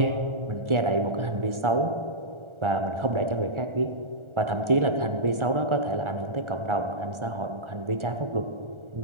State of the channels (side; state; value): left; late; 1.4 ms